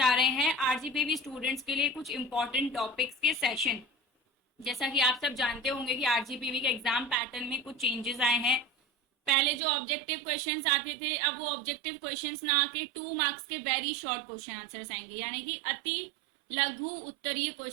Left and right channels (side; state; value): left; drops out; at 9.6 s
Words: रहे हैं आरजीपीवी स्टूडेंट्स के लिए कुछ इंपॉर्टेंट टॉपिक्स के सेशन। जैसा कि आप सब जानते होंगे कि आरजीपीवी के एग्जाम पैटर्न में कुछ चेंजेस आए हैं। पहले जो ऑब्जेक्टिव क्वेश्चंस आते थे, अब वो ऑब्जेक्टिव क्वेश्चंस ना आके 2 मार्क्स के वेरी शॉर्ट क्वेश्चन आंसर्स आएंगे, यानी कि अति लघु उत्तरीय